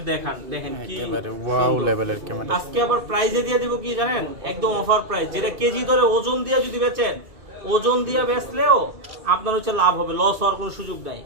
দেখেন কি ওয়াও লেভেলের ক্যামেরা। আজকে আবার প্রাইজে দিয়ে দিব কি জানেন, একদম অফার প্রাইস, যেটা কেজি ধরে ওজন দিয়ে যদি বেচেন, ওজন দিয়ে বেচলেও আপনার হচ্ছে লাভ হবে, লস হওয়ার কোনো সুযোগ নাই।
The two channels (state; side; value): late; left; 2.5 ms